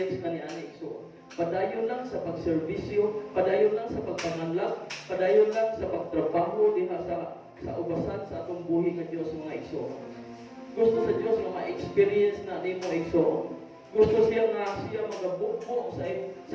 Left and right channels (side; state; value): both; identical; correlation 1.00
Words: ka ni Ani Igsoon. Padayon lang sa pagserbisyo, padayon lang sa pagpanganlag, padayon lang sa pagtrabaho diha sa ubasan sa atong buhi nga Diyos mga Igsoon. Gusto sa Diyos nga ma-experience na nimo Igsoon. Gusto siya nga siya magabukbo